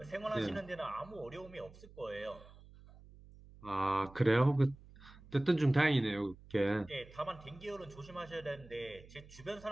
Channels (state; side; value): noise; right; hum, 21 dB below the sound